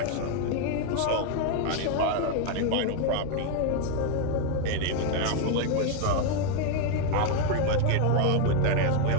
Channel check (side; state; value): both; different; correlation 0.01